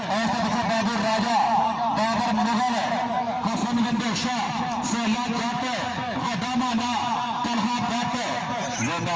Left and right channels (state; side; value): identical; both; correlation 1.00